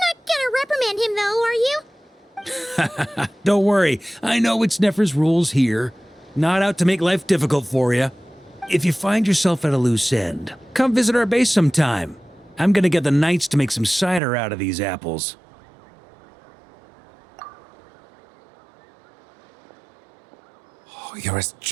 not gonna reprimand him though, are you? Don't worry, I know it's Nefer's rules here. Not out to make life difficult for you. If you find yourself at a loose end, come visit our base sometime. I'm gonna get the knights to make some cider out of these apples. Oh, you're as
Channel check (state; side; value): drops out; left; at 14.2 s